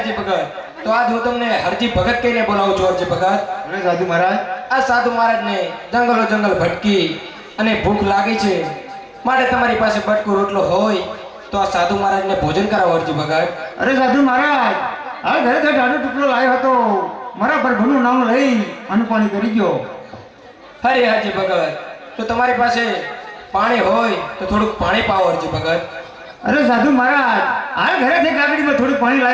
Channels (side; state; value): both; identical; correlation 1.00